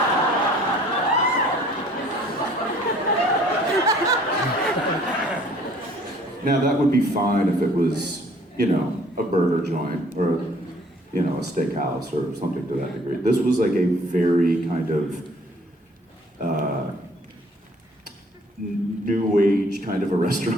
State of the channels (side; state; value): both; normal; correlation 0.56